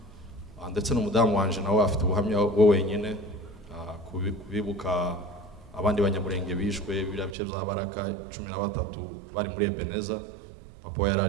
Ndetse n'umudamu wanje nawe afite ubuhamya we wenyine kubibuka abandi banyamurenge bishwe biriya bice bya Baraka 13 bari muri Ebeneza. Papa yari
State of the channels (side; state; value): left; drops out; at 7.4 s